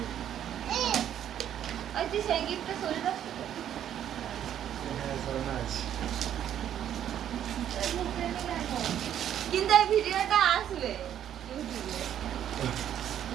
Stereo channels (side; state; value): left; quieter; 10.3 dB